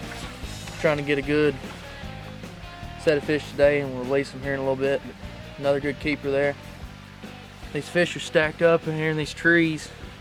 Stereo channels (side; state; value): both; identical; correlation 1.00